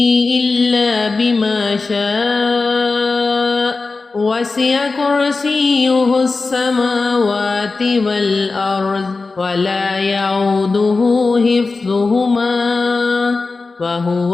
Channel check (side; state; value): right; quieter; 3.9 dB